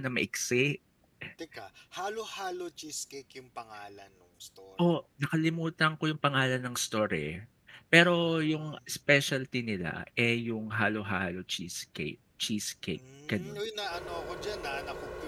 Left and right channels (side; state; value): both; identical; correlation 1.00